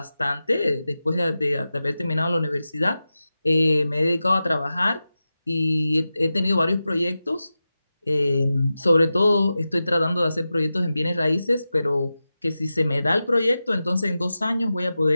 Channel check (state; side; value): inverted; both; correlation -0.93